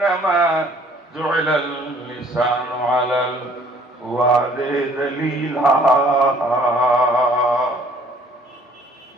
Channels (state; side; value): normal; both; correlation 0.58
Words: जुइलल लिसानु अलल हुआदे दलीला।